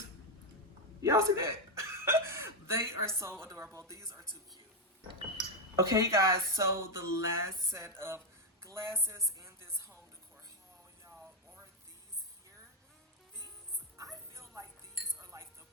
y'all see that? They are so adorable. These are too cute. Okay, you guys, so the last set of glasses in this home decor haul, y'all, are these here. These, I feel like these are like the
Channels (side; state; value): both; normal; correlation 0.04